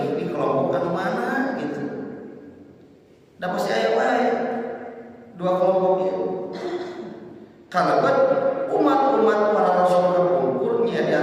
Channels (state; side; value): identical; both; correlation 1.00